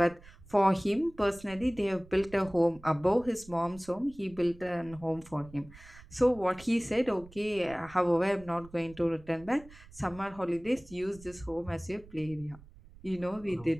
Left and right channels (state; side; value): noise; right; rumble, 21 dB below the sound